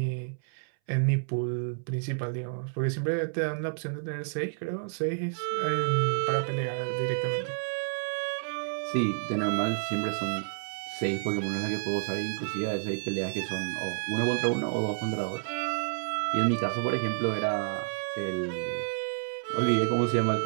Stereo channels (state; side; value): silent; left; 58 dB below the other